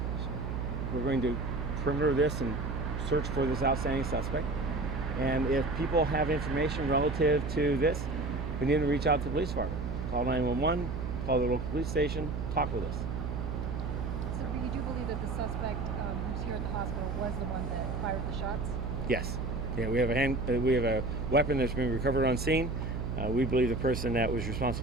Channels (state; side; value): noise; right; hum, 3 dB below the sound